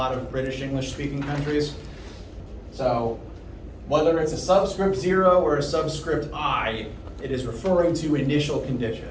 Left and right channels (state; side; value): identical; both; correlation 1.00